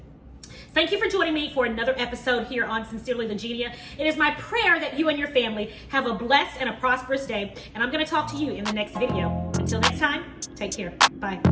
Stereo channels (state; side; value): identical; both; correlation 1.00